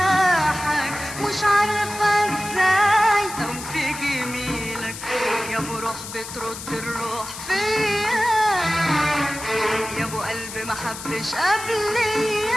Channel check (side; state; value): left; noise; hiss, 11 dB below the sound